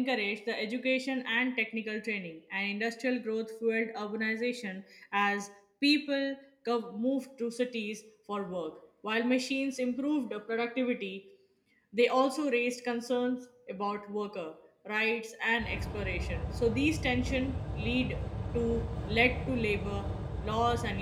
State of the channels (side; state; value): both; identical; correlation 1.00